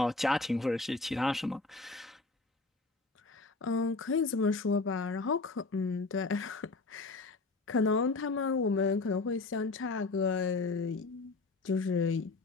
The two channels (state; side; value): quieter; right; 3.7 dB